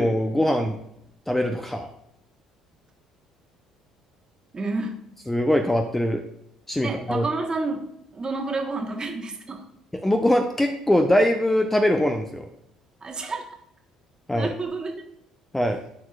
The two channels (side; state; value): both; normal; correlation 0.89